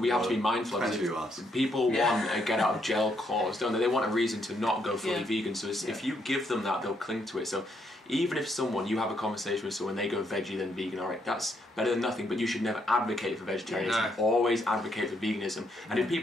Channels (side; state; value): both; normal; correlation 0.75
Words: have to be mindful of is people want a get out of jail clause, don't they? They want a reason to not go fully vegan. So if you give them that, they'll cling to it. So even if you have a conversation with someone, they go veggie then vegan, alright, that's better than nothing, but you should never advocate for vegetarianism. Always advocate for veganism. And if